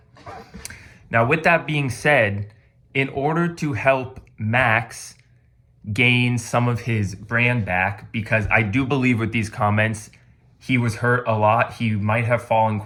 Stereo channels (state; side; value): identical; both; correlation 1.00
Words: Now, with that being said, in order to help Max gain some of his brand back, because I do believe with these comments, he was hurt a lot. He might have fallen